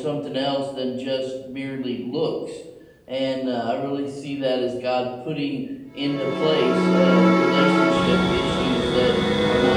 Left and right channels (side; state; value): both; identical; correlation 1.00